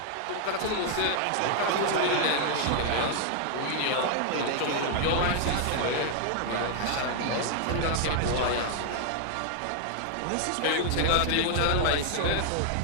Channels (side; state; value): both; different; correlation 0.00